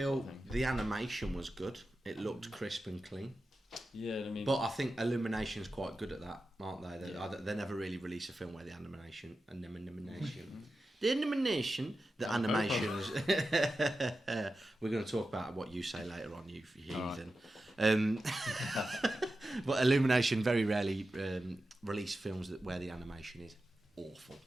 the animation was good. It looked crisp and clean. Yeah, I mean, but I think Illumination's quite good at that, aren't they? They never really release a film where the animation, the animations. We're going to talk about what you say later on, you heathen. But Illumination very rarely release films where the animation is awful.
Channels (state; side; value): normal; both; correlation 0.92